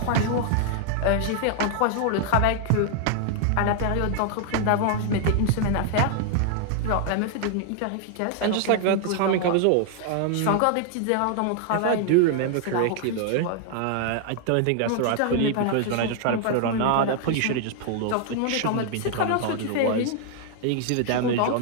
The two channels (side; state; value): both; different; correlation 0.00